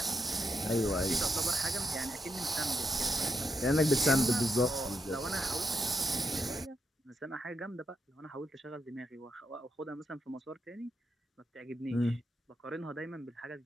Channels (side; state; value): both; normal; correlation 0.81